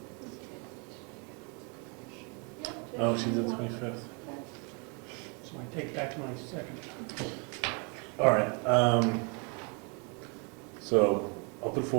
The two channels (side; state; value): left; quieter; 34.4 dB